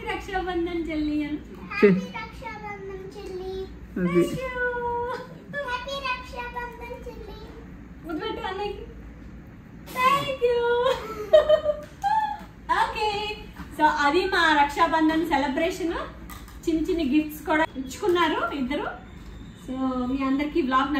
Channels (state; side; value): identical; both; correlation 1.00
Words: రక్షాబంధన్ చెల్లి అని. ముద్దుపెట్టు అన్నయ్యకి. Thank you. ఓకే, సో అది మా రక్షాబంధన్ సెలబ్రేషన్. చిన్న చిన్న గిఫ్ట్స్ కూడా ఇచ్చుకున్నారు ఇద్దరు. సో మీ అందరికి బ్లాగ్